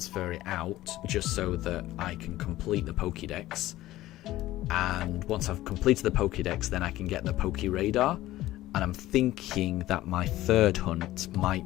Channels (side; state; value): right; quieter; 15.7 dB